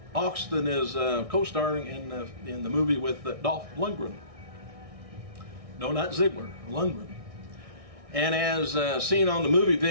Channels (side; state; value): left; late; 1.6 ms